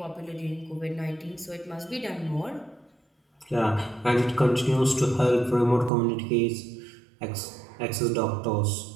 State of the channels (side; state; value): left; drops out; at 5.9 s